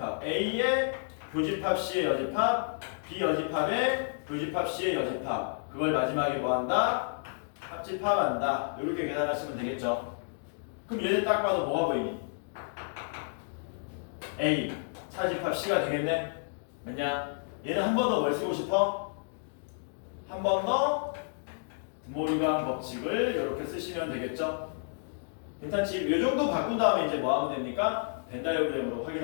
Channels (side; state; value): right; silent; digital silence